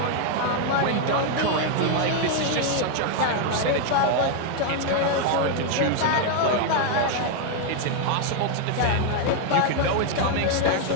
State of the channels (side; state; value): both; different; correlation 0.00